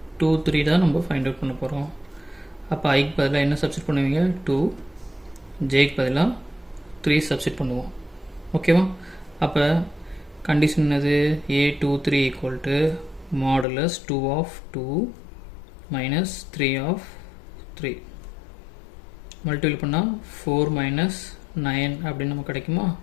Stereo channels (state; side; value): drops out; right; at 13.7 s